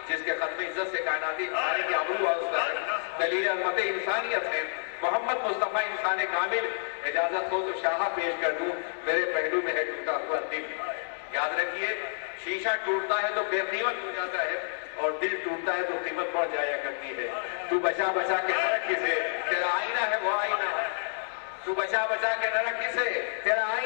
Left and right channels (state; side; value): silent; right; 58 dB below the other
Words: جس کے ختم عزت سے کائناتی انسانی کی آبرو واسطہ ہے، دلیل عظمت انسانیت ہے، محمد مصطفیٰ انسان کامل۔ اجازت ہو تو شاہ پیش کر دوں، میرے پہلو میں ہے ٹوٹا ہوا دل۔ یاد رکھیے شیشہ ٹوٹتا ہے تو بے قیمت ہو جاتا ہے اور دل ٹوٹتا ہے تو قیمت بڑھ جایا کرتی ہے۔ تو بچا بچا کے نہ رکھ کسے، تیرا آئینہ ہے وہ آئینہ، تو بچا بچا کے نہ رکھ کسے، تیرا